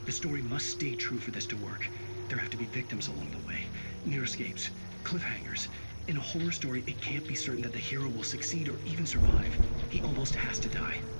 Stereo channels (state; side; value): inverted; both; correlation -1.00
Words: The story must stay true for this to work. There have to be victims along the way, near escapes, cliffhangers. In a horror story, it can't be certain that the hero will succeed or even survive. He almost has to die.